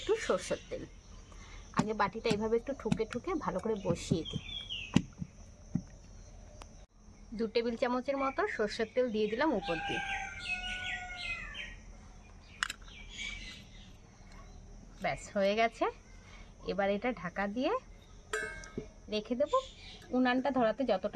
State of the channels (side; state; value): both; identical; correlation 1.00